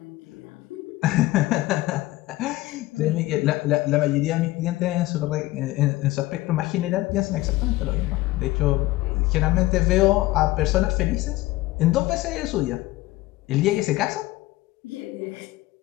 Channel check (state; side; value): quieter; right; 18.2 dB